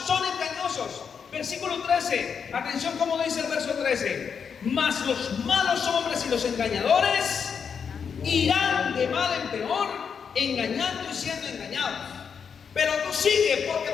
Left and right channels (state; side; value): quieter; right; 6.6 dB